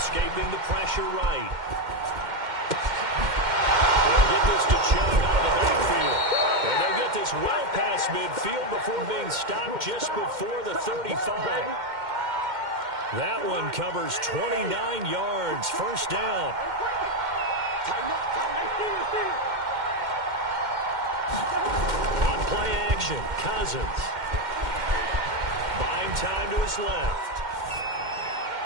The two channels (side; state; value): left; late; 2.1 ms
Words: the pressure right. Get this to Chubb out of the backfield. And they'll get this well past midfield before being stopped just before the 35. That one covers 29 yards. First down. On play action, Cousins. Buying time to his left.